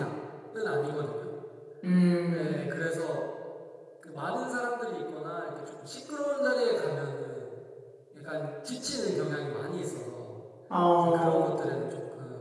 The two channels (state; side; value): identical; both; correlation 1.00